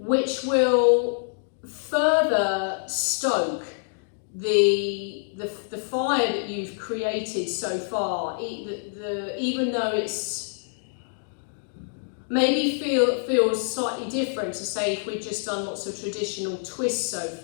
will further stoke the fire that you've created so far, even though it's maybe feels slightly different to say if we've just done lots of traditional twists so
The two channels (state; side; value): silent; right; digital silence